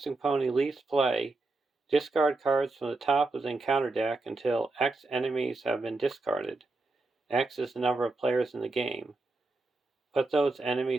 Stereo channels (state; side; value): quieter; left; 3.3 dB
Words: Pony leaves play, discard cards from the top of the encounter deck until X enemies have been discarded. X is the number of players in the game. Put those